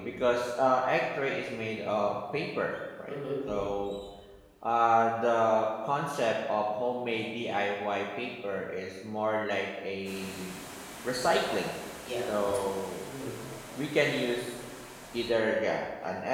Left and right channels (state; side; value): identical; both; correlation 1.00